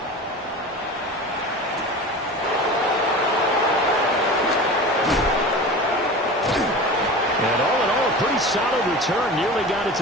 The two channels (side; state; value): both; normal; correlation 0.33